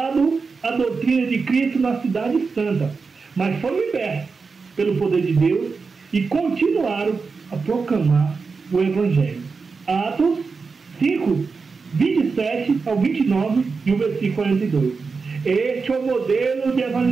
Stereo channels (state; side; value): quieter; left; 4.7 dB